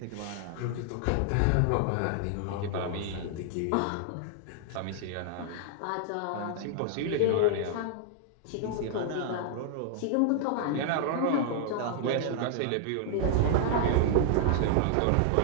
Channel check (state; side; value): different; both; correlation -0.01